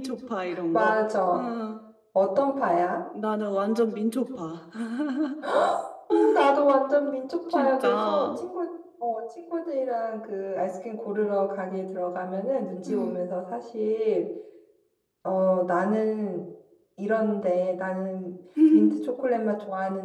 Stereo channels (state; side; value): identical; both; correlation 1.00